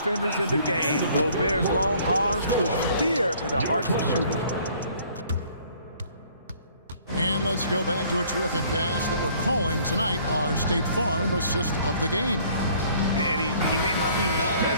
in the game. Gobert's long arms put fear in the hearts of shooters. And let's go back to a terrific pass that we're calling tonight our State Farm assist of the game. And he may not be known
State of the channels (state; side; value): inverted; both; correlation -0.58